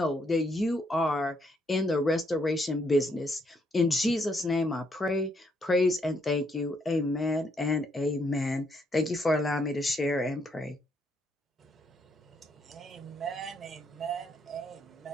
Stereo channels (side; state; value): both; normal; correlation 0.73